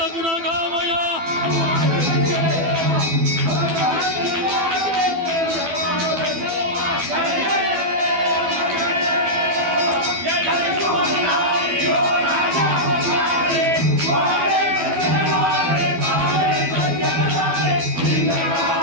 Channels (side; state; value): left; late; 12 ms